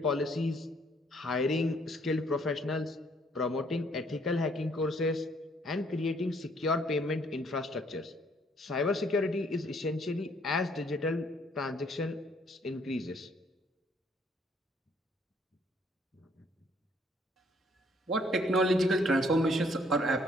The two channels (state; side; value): normal; both; correlation 0.65